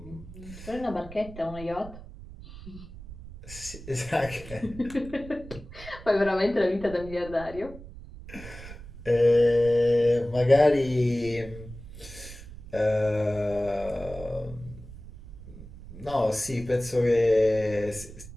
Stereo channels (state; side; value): noise; right; rumble, 15 dB below the sound